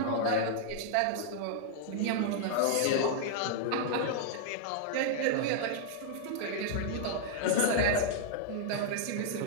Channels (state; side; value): different; both; correlation -0.01